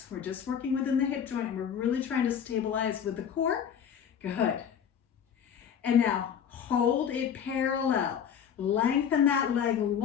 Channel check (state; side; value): quieter; right; 8.2 dB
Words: We're just working within the hip joint and we're really trying to stabilize with the core. Good. And now hold it parallel. Lengthen that leg